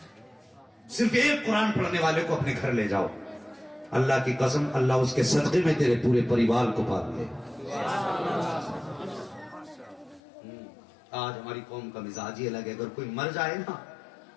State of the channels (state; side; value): drops out; right; at 10.2 s